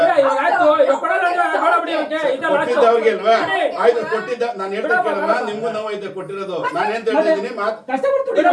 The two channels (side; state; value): both; identical; correlation 1.00